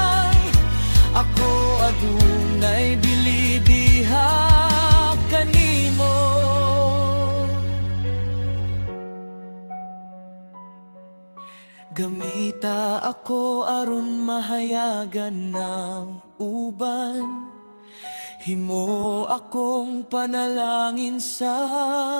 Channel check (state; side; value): inverted; both; correlation -1.00